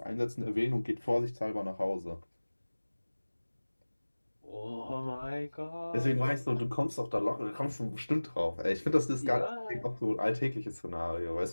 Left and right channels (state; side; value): inverted; both; correlation -1.00